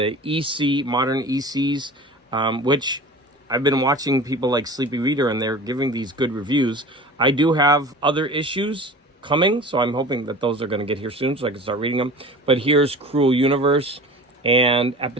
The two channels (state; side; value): normal; both; correlation 0.38